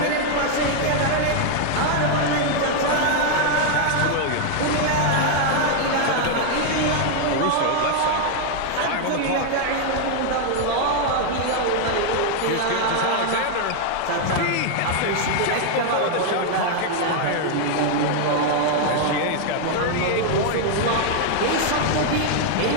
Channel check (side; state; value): both; different; correlation 0.00